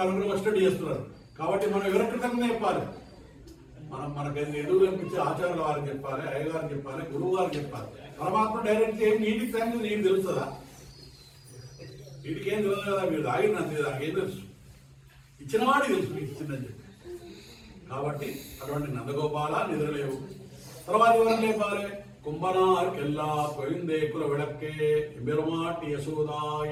వచ్చేటట్టు చేస్తున్నారు. కాబట్టి మనం ఎవరి కృతజ్ఞత చెప్పాలి? మనకు ఎదురు కనిపించే ఆచార్యుల వారికి చెప్పాలి, అయ్యగారికి చెప్పాలి, గురువు గారికి చెప్పాలి. పరమాత్మ డైరెక్ట్ ఏం నీటికి థ్యాంక్స్ నీకు తెలుస్తుందా? వీటికి ఏం తెలియదు కదా, మీరు తాగినంతే, నాకేం తెలుసు, ఇచ్చిన వాడికి తెలుసు మీకు ఇచ్చిందని చెప్పి. కాబట్టి అటువంటి నందగోపాల నిద్రలేవు. తర్వాత ఎవరు లేపాలి? కుంభనార్కెల్లా పోయిందే కుల విడక్కే బెరుమాటి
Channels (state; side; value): identical; both; correlation 1.00